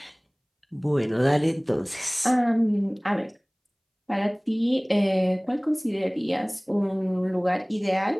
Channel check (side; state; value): both; identical; correlation 1.00